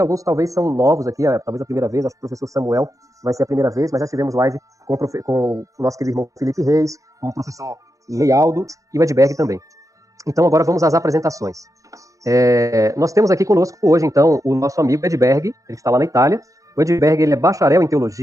talvez são novos aqui, talvez a primeira vez, acho que o professor Samuel vai ser a primeira vez, mas já tivemos live com o nosso querido irmão Felipe Reis, com o professor Lealdo e o Edberg também. Então agora vamos às apresentações. Nós temos aqui conosco hoje, então, o nosso amigo Edberg, ele está lá na Itália. O Edberg, ele é bacharel em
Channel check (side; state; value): left; late; 0.16 ms